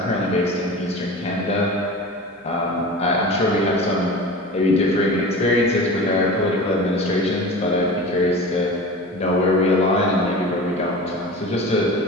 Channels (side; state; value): both; normal; correlation 0.34